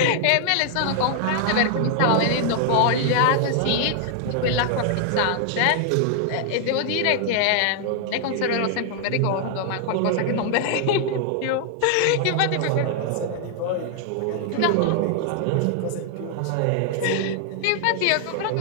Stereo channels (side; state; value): both; different; correlation -0.01